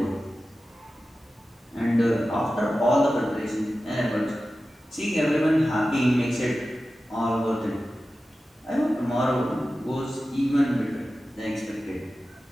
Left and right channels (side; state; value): both; normal; correlation 0.94